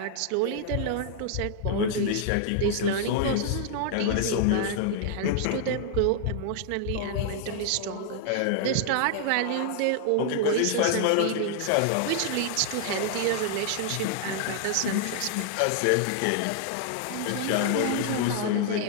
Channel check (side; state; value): both; different; correlation -0.01